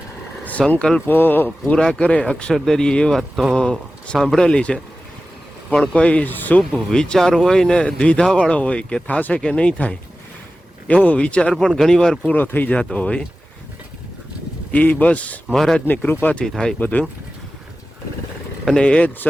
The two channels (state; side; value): normal; both; correlation 0.95